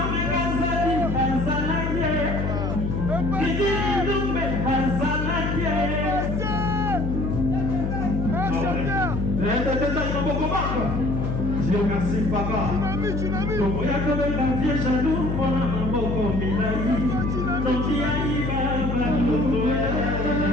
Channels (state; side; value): noise; left; hum, 1 dB below the sound